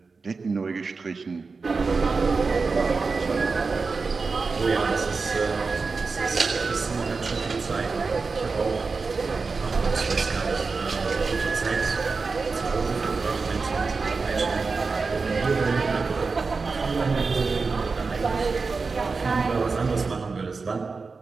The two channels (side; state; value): left; quieter; 4.4 dB